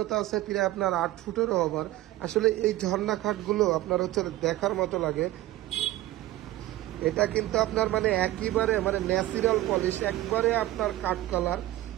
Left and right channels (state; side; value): quieter; left; 15.9 dB